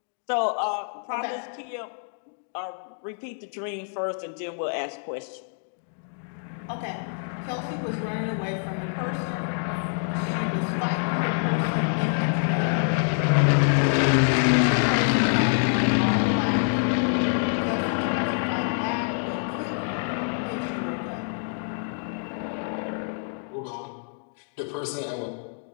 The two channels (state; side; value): silent; right; 60 dB below the other